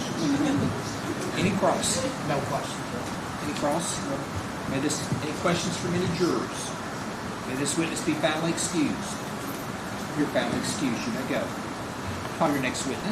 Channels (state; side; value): identical; both; correlation 1.00